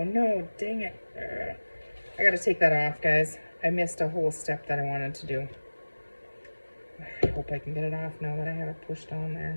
no, dang it. I gotta take that off, guys. I missed a whole step that I wanted to do. I hope I can get it off now that I have it pushed on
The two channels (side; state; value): both; inverted; correlation -1.00